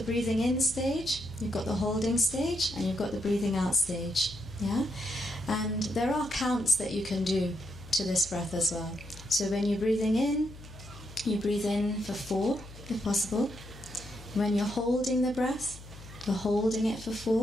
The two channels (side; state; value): left; noise; hum, 17 dB below the sound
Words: breathing in stage, you've got the holding stage, and you've got the breathing out stage. Yeah? And there are counts that you can do to this breath as well. So when you're breathing in, you breathe in for 4, if possible. When you're holding the breath, you're holding it for